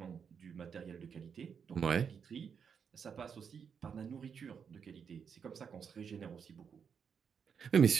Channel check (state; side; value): quieter; left; 6.8 dB